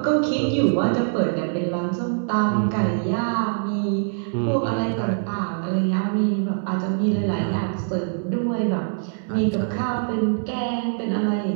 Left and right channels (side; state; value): left; silent; digital silence